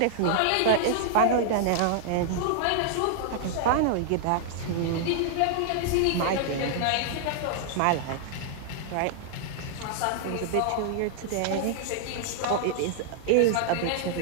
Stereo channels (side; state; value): both; different; correlation -0.01